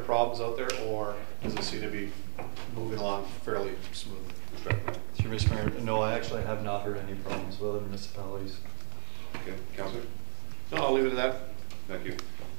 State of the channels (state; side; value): silent; left; 56 dB below the other